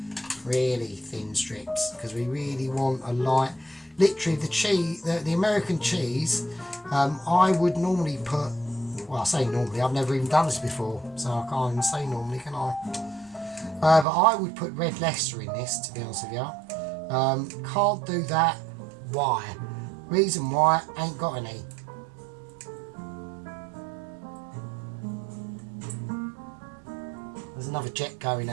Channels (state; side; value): drops out; left; at 14.1 s